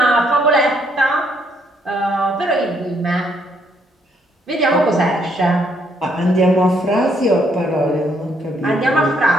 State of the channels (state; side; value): normal; both; correlation 0.71